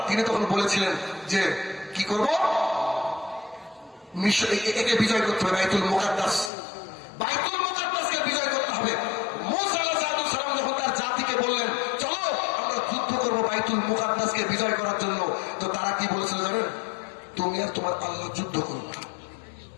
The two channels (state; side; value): drops out; right; at 6.5 s